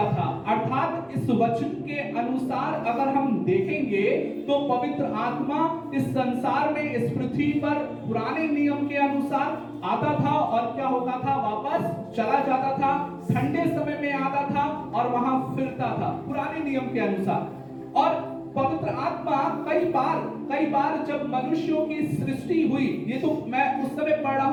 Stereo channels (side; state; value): both; identical; correlation 1.00